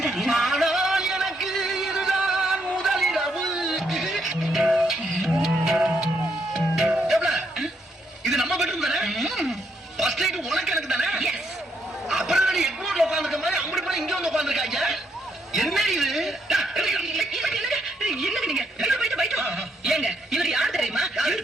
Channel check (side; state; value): both; normal; correlation 0.75